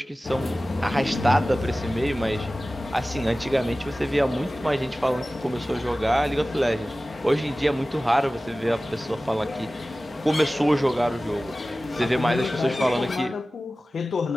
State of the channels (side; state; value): both; normal; correlation 0.96